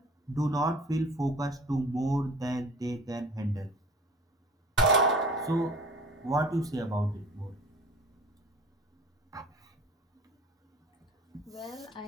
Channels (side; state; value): both; normal; correlation 0.44